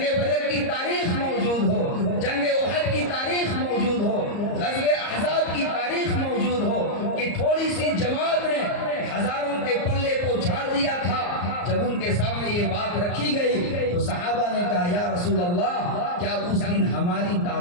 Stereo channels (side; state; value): right; late; 34 ms